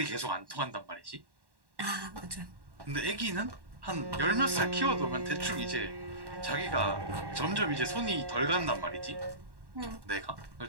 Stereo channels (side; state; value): left; late; 1.1 ms